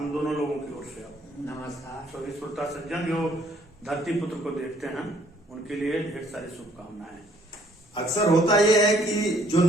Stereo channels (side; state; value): both; normal; correlation 0.63